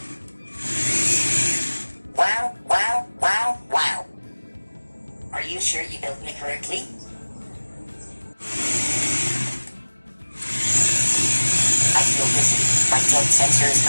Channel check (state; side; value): inverted; both; correlation -1.00